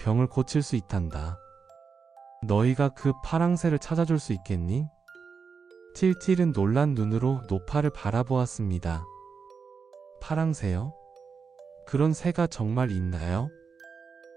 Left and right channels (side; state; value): left; quieter; 5.6 dB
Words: 고칠 수 있단다. 너희가 그 파랑새를 찾아줄 수 있겠니? 틸틸은 놀란 눈으로 노파를 바라보았습니다. 파랑새요? 그런 새가 정말 있나요?